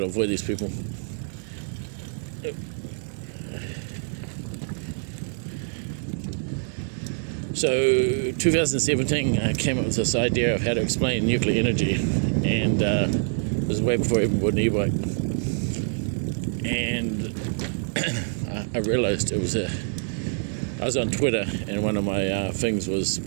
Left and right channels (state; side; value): silent; left; 60 dB below the other